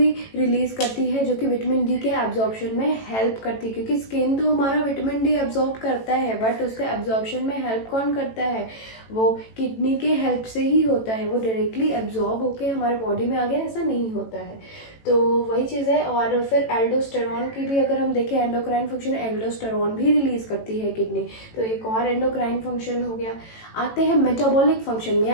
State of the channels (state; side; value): late; right; 18 ms